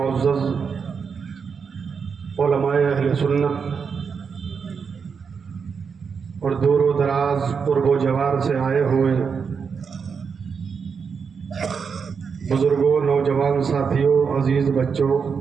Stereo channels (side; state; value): left; quieter; 6.0 dB